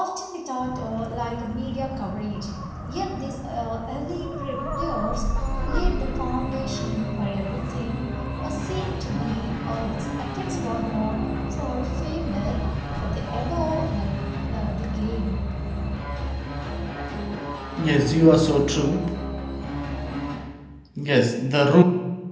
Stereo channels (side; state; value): both; identical; correlation 1.00